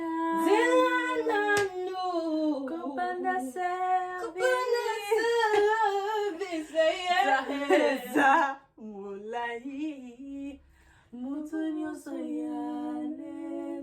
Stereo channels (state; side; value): identical; both; correlation 1.00